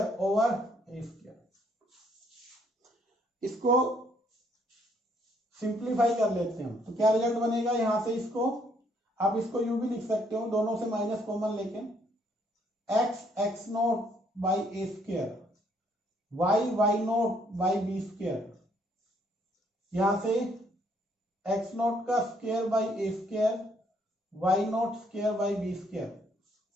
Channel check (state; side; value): normal; both; correlation 0.68